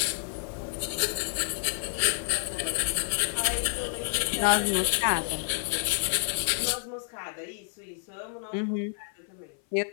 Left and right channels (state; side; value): silent; right; 55 dB below the other